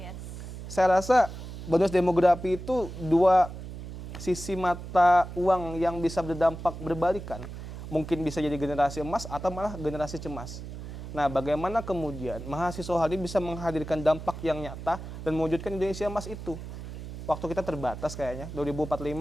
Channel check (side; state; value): right; noise; hum, 10 dB below the sound